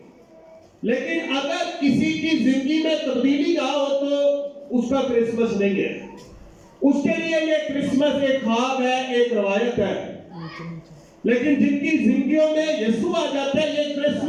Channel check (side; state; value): both; identical; correlation 1.00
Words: لیکن اگر کسی کی زندگی میں تبدیلی نہ ہو تو اس کا کرسمس نہیں ہے۔ اس کے لیے یہ کرسمس ایک خواب ہے، ایک روایت ہے، لیکن جن کی زندگیوں میں یسوع آ جاتا ہے، یہ